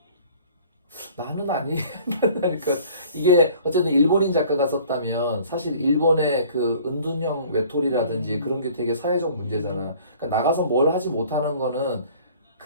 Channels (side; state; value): both; inverted; correlation -0.51